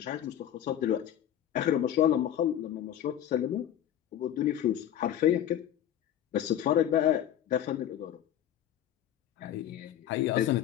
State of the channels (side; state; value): right; quieter; 11.0 dB